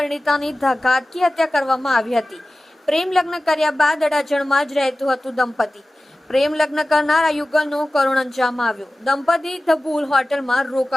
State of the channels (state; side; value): normal; both; correlation 0.96